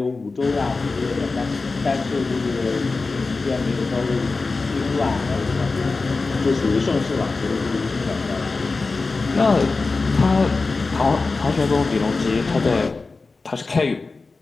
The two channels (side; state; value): right; quieter; 3.9 dB